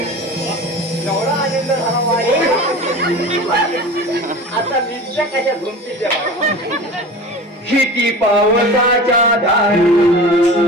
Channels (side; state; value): both; normal; correlation 0.35